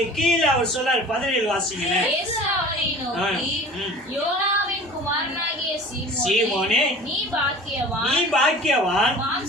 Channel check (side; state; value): both; normal; correlation 0.42